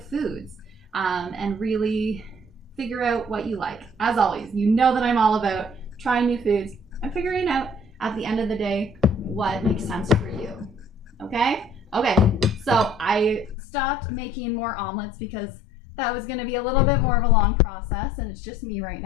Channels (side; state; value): right; drops out; at 13.6 s